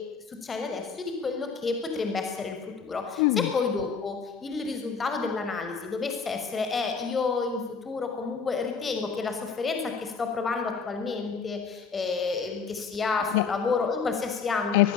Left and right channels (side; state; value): right; quieter; 5.6 dB